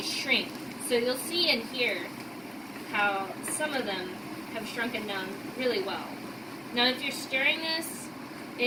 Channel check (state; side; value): identical; both; correlation 1.00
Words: shrink. So you'll see and hear how some of them have shrunken down really well. Now if you're stirring this,